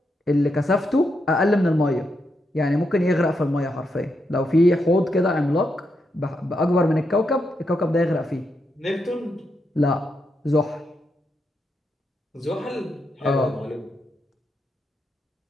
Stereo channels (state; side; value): normal; both; correlation 0.83